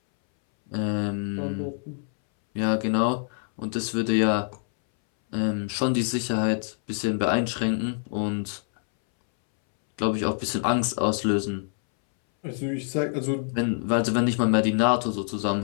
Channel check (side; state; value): right; silent; 61 dB below the other